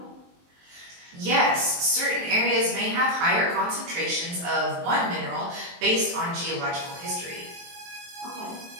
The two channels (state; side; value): late; left; 23 ms